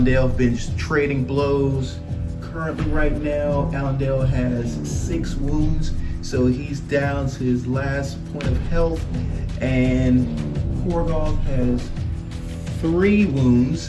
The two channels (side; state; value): both; identical; correlation 1.00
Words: have been just trading blows. Currently right now, Allendale has 6 wounds, so he's down to his last point of health, and Korgoth has 3 wounds,